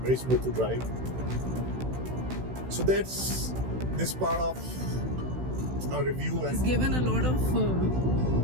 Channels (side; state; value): left; late; 16 ms